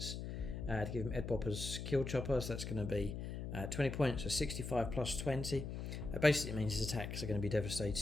to give him Headwhoppa's Killchoppa, so that's going to be 20 points, so 65 plus 20. That basically means his attacks are going to be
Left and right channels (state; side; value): noise; left; hum, 5 dB below the sound